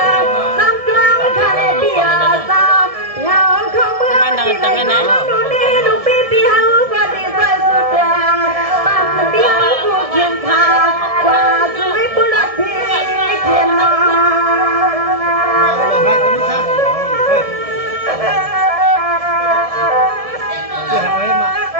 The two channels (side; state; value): left; late; 1.7 ms